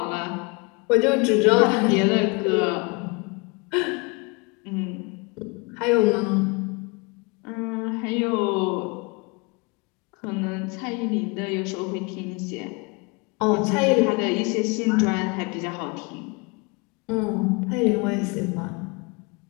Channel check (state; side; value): quieter; right; 29.4 dB